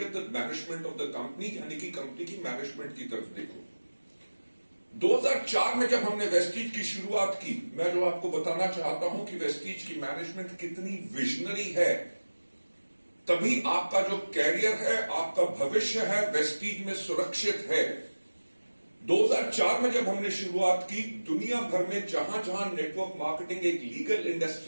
at the management of the company, यानी कि कंपनी की मैनेजमेंट की तरफ देखो। 2004 में जब हमने वेस्टीज की शुरुआत की, मैं जो आपको बताना चाहता हूं कि वेस्टीज की मैनेजमेंट कितनी विजनरी है, तभी आपका जो कैरियर है, आपका भविष्य है, वेस्टीज में सुरक्षित है। 2004 में जब हमने शुरुआत की, दुनिया भर में जहां जहां नेटवर्क मार्केटिंग एक लीगल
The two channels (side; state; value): both; inverted; correlation -1.00